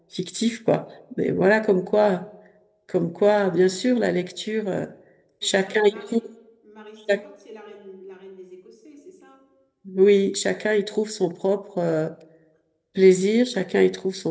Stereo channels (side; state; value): both; identical; correlation 1.00